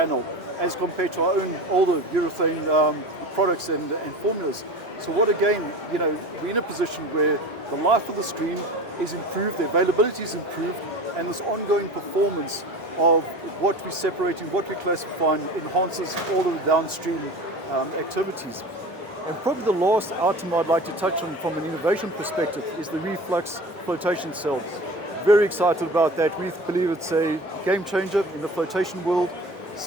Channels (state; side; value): normal; both; correlation 0.35